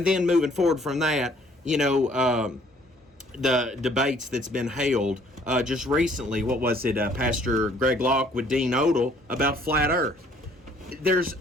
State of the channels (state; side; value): normal; both; correlation 0.60